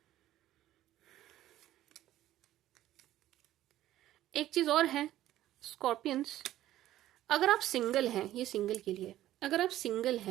एक चीज और है स्कॉर्पियंस, अगर आप सिंगल हैं, ये सिंगल के लिए, अगर आप सिंगल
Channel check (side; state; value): left; quieter; 13.8 dB